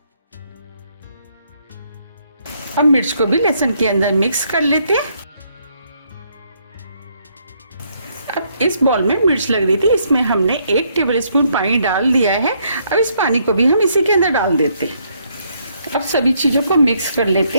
अब मिर्च को भी लहसुन के अंदर मिक्स कर लेते हैं। अब इस बॉल में मिर्च लग रही थी, इसमें हमने 1 टेबल स्पून पानी डाल दिया है। अब इस पानी को भी हम इसी के अंदर डाल देते हैं। अब सभी चीजों को मिक्स कर लेते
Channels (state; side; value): inverted; both; correlation -0.71